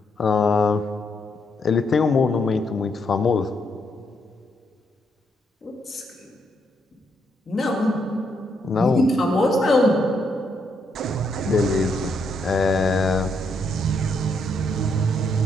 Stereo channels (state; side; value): normal; both; correlation 0.76